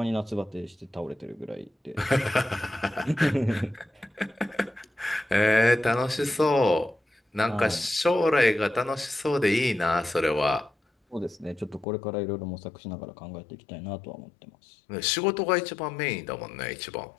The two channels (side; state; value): right; drops out; at 11.9 s